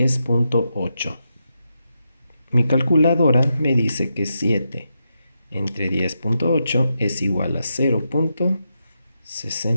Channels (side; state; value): both; inverted; correlation -0.86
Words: Mi calculadora me dice que 7 entre 10.8 es igual a